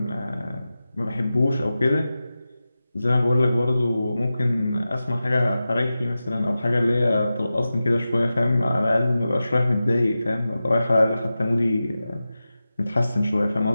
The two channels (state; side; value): inverted; both; correlation -0.94